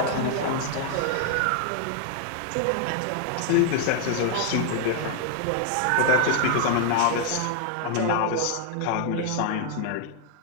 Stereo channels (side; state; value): both; different; correlation 0.00